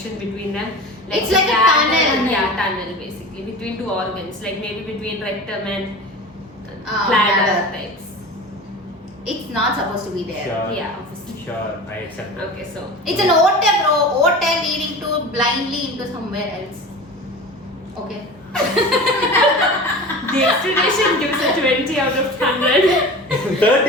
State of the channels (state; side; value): normal; both; correlation 0.34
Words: between them. It's the like a bladder- tunnel. Yeah, tunnel basically between two organs, like maybe between rectum and bladder. bladder types. It's not supposed to be there. Sure. Yeah, obviously. Sure, I accept that. Okay, so It's an ote, bro. Ote leading to blindly into somewhere else. Okay. the explanation gives a 20 out of 100.